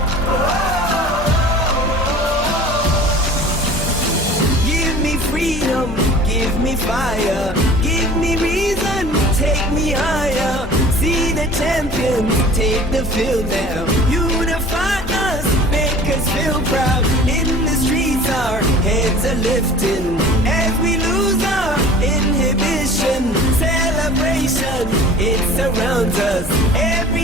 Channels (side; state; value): both; normal; correlation 0.44